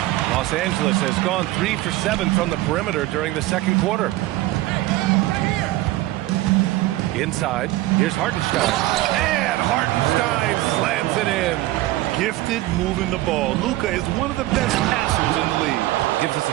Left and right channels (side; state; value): left; quieter; 17.2 dB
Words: Los Angeles has gone 3 for 7 from the perimeter during the second quarter. Inside, here's Hartenstein. And Hartenstein slams it in. Gifted moving the ball. Luka is one of the best passers in the league. Gives us a